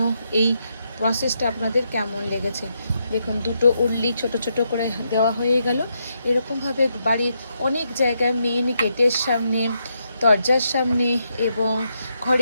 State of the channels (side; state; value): both; inverted; correlation -0.80